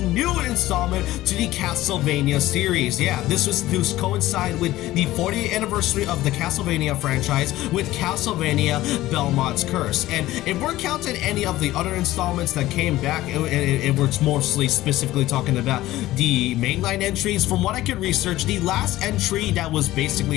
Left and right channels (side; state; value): right; quieter; 16.1 dB